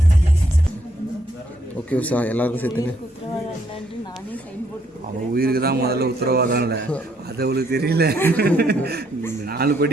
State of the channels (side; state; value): both; normal; correlation 0.71